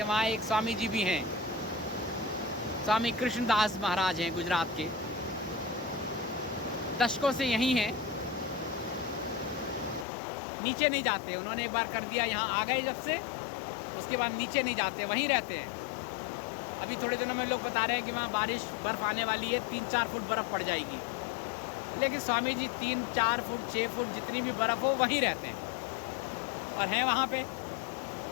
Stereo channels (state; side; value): drops out; right; at 10.1 s